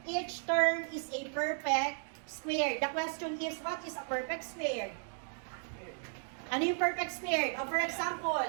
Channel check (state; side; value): silent; left; 54 dB below the other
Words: each term is a perfect square. The question is, what is a perfect square? Ano yung perfect square? For